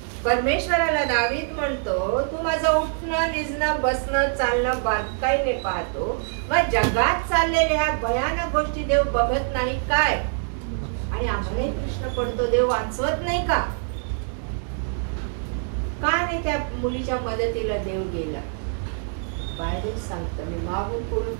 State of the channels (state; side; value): silent; left; 62 dB below the other